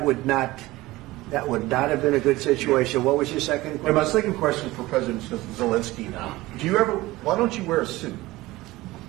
would not have been a good situation. What was your second question? And my second question for President Zelensky. Why don't you wear a suit?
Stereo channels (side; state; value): left; quieter; 19.0 dB